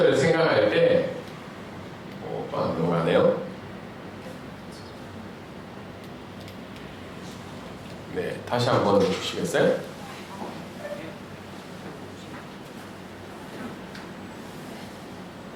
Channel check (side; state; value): both; identical; correlation 1.00